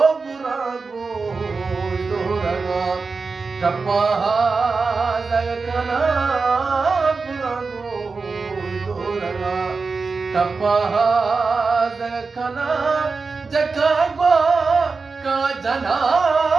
बुरा गो टप्पा जलकना बुरा गोरना टप्पा जलकना जकागो का जना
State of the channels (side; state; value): left; quieter; 4.4 dB